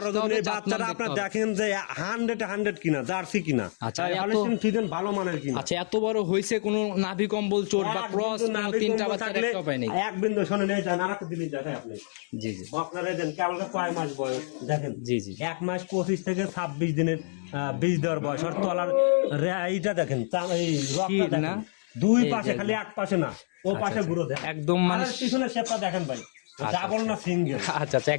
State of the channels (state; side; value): silent; right; digital silence